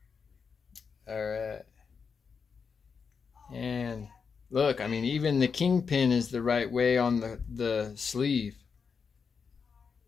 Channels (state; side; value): quieter; right; 5.8 dB